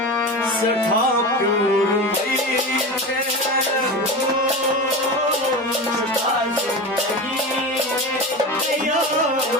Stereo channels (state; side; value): normal; both; correlation 0.26